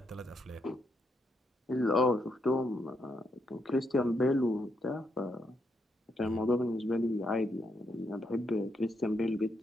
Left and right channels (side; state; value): both; normal; correlation 0.79